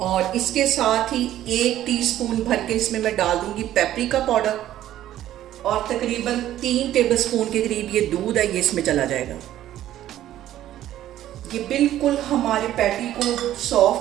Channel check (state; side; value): quieter; left; 12.8 dB